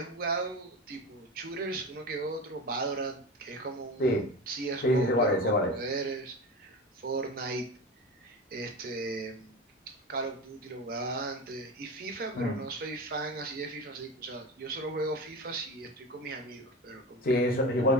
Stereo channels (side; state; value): both; normal; correlation 0.27